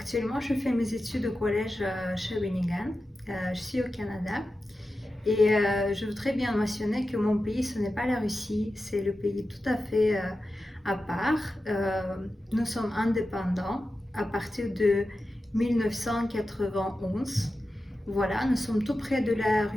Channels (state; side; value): normal; both; correlation 0.92